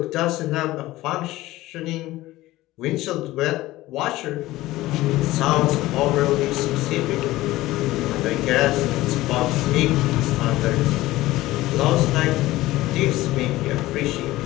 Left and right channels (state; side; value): quieter; right; 17.3 dB